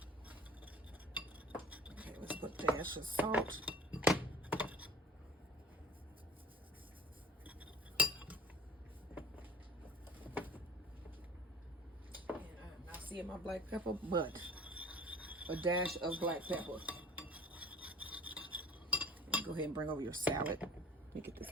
Okay, let's put a dash of salt. And I'm not seeing my black pepper, but a dash of black pepper. Go ahead and bring over your salad. Let me get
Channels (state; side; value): normal; both; correlation 0.49